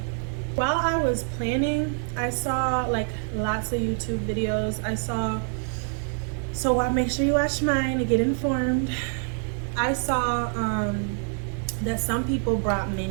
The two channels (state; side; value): silent; left; 56 dB below the other